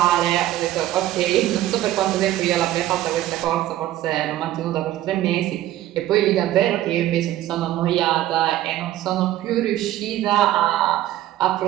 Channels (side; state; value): left; quieter; 14.1 dB